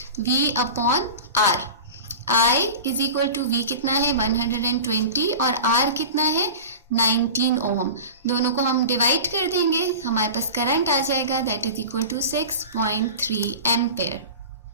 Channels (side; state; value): both; inverted; correlation -0.33